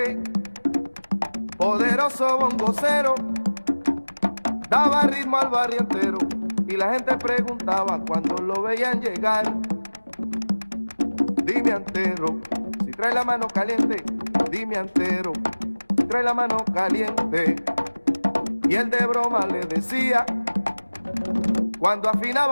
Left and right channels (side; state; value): both; inverted; correlation -1.00